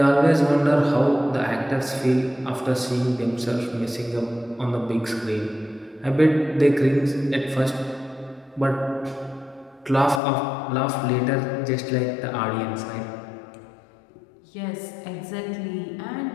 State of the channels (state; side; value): drops out; right; at 10.2 s